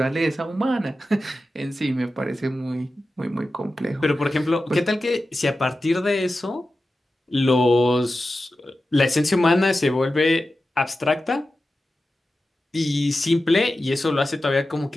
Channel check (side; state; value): both; normal; correlation 0.93